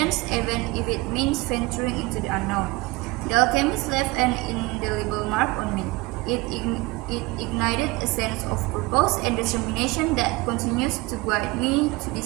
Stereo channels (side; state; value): left; quieter; 22.6 dB